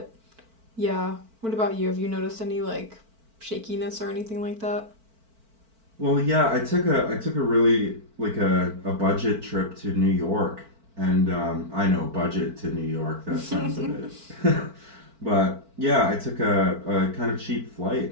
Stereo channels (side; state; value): left; late; 4.5 ms